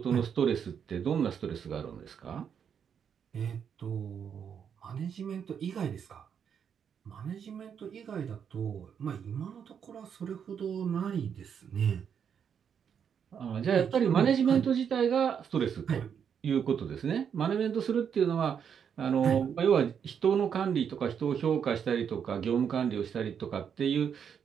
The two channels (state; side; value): quieter; left; 7.6 dB